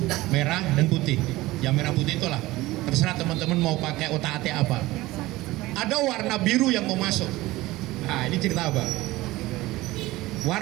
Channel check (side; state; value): left; quieter; 18.6 dB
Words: merah dan putih. Yang merah putih itulah terserah teman-teman mau pakai otak-atik apa. Ada warna biru yang mau masuk. Nah ini cerita apa?